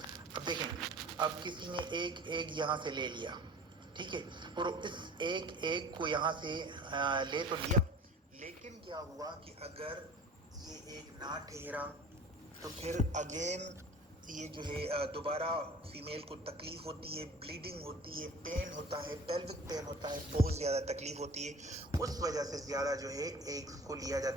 اب دیکھیں، اب کسی نے ایک ایگ یہاں سے لے لیا، ٹھیک ہے، اور اس ایک ایگ کو یہاں سے لے تو لیا، لیکن کیا ہوا کہ اگر یہ ایک نہ ٹھہرا تو پھر اگین یہ جو ہے دوبارہ فیمیل کو تکلیف ہوتی ہے، بلیڈنگ ہوتی ہے، پین ہوتا ہے، پیلوک پین ہوتا ہے، بہت زیادہ تکلیف ہوتی ہے۔ اس وجہ سے زیادہ جو ہے ایگز کو لیا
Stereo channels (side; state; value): both; normal; correlation 0.42